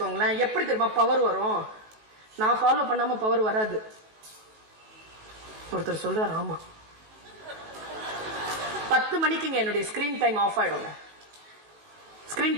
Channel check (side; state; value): left; late; 19 ms